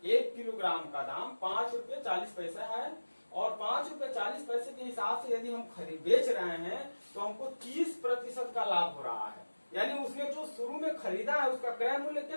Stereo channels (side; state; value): both; inverted; correlation -1.00